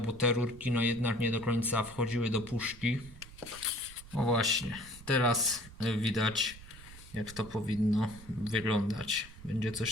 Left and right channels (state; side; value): noise; right; rumble, 18 dB below the sound